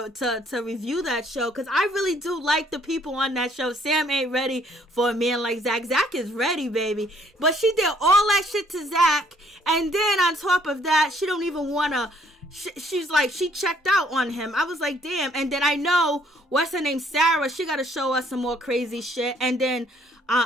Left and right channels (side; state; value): both; normal; correlation 0.63